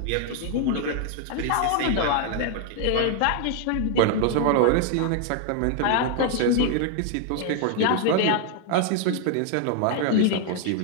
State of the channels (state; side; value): different; both; correlation 0.00